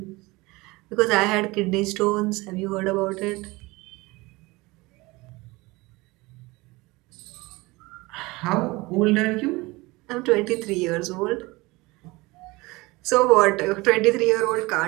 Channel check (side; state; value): left; quieter; 22.5 dB